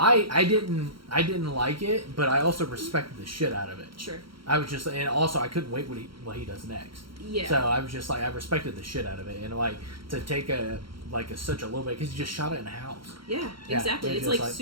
I didn't like it, but I also respected the shit out of it. Sure. I was just, and also I couldn't wait what he does next. Yeah. So I was just like, I respected the shit out of it, and like to take such a low bit, because he just shot it in a house. Yeah, exactly. It's like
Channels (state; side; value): late; left; 0.74 ms